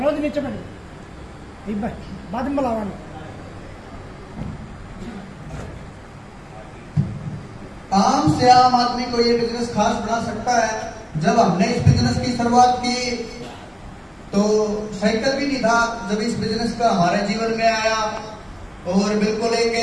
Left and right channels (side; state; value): both; identical; correlation 1.00